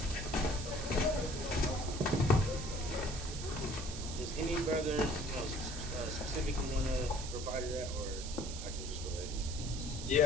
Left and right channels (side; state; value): right; noise; hiss, 9 dB below the sound